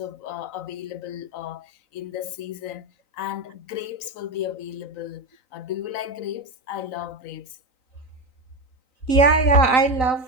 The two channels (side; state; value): right; late; 3.9 ms